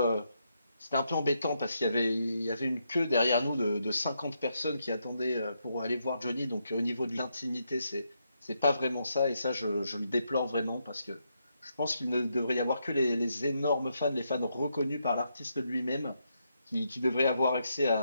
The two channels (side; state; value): both; inverted; correlation -0.80